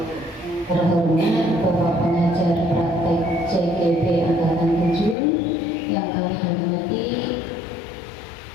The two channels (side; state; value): right; drops out; at 5.2 s